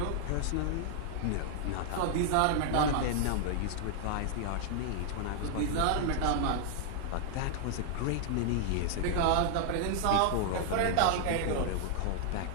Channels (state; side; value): different; both; correlation 0.00